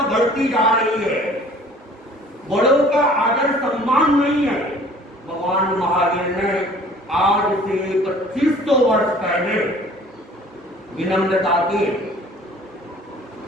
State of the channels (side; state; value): both; normal; correlation 0.51